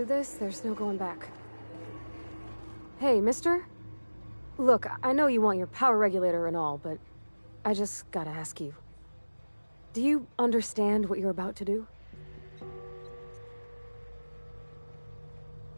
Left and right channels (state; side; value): inverted; both; correlation -1.00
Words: this, there's no going back. Hey, mister? Look, I know you want your power regulator and all, but I just gotta ask you. Do you understand what you're about to do?